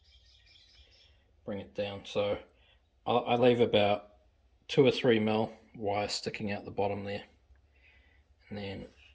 bring it down. So I leave about 2 or 3 mil wire sticking out the bottom there, and then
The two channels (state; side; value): identical; both; correlation 1.00